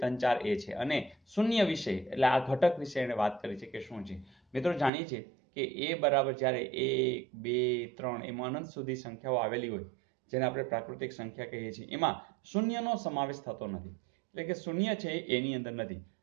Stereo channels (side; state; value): left; drops out; at 4.9 s